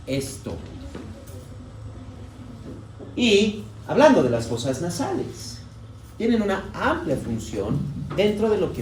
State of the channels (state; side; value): identical; both; correlation 1.00